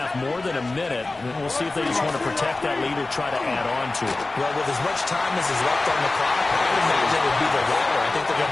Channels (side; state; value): right; quieter; 3.2 dB